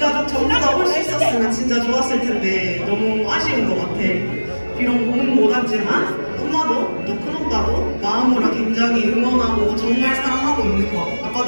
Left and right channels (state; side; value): inverted; both; correlation -1.00